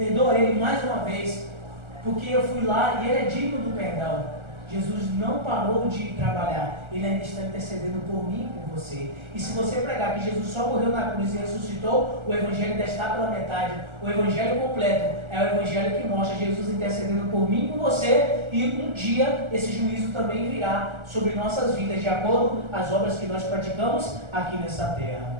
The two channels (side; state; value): left; late; 1.4 ms